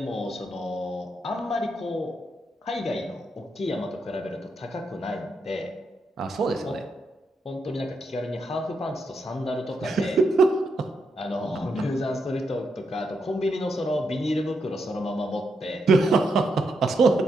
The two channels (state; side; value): normal; both; correlation 0.81